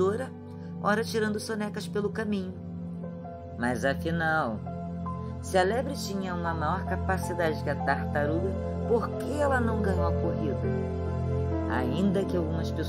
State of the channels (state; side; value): identical; both; correlation 1.00